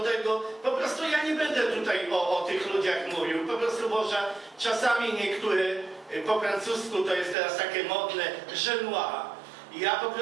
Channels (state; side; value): drops out; left; at 7.4 s